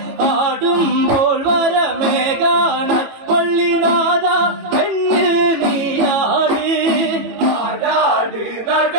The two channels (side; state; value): left; late; 18 ms